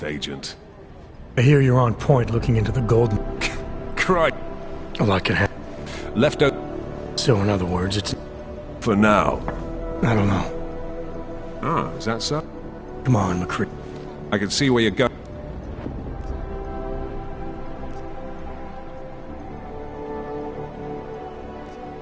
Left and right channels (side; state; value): both; identical; correlation 1.00